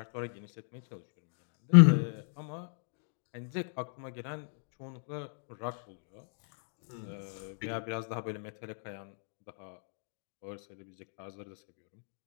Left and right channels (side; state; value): right; silent; digital silence